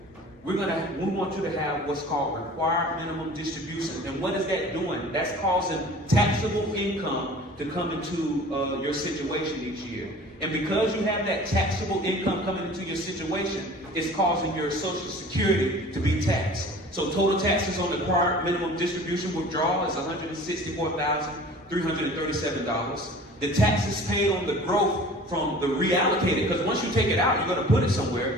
we want you to have what's called required minimum distribution. And what is that doing? That's causing taxable income to come into your situation each year. And because you have that taxable income coming into your situation, it's causing your Social Security to be taxed. So total taxes on the required minimum distribution withdrawal is $164,337. The taxes paid on the growth from the reallocated, because once you take it out, you're going to put it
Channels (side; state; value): both; normal; correlation 0.44